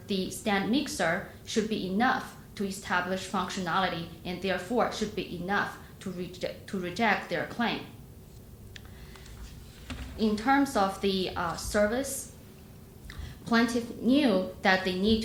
the stand mixer should be enough to establish functionality, and therefore should be enough to reject their claim. In terms of the service, plaintiff knew that they need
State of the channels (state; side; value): identical; both; correlation 1.00